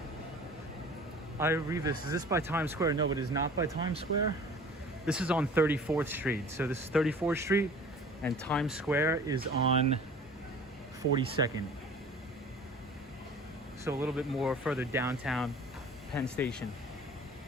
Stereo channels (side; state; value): both; normal; correlation 0.45